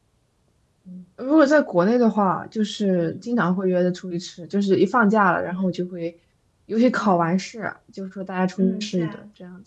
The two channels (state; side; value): identical; both; correlation 1.00